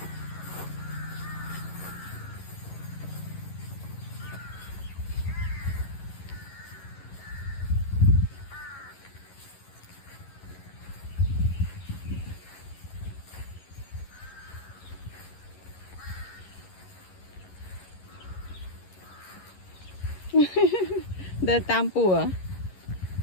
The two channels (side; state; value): right; late; 11 ms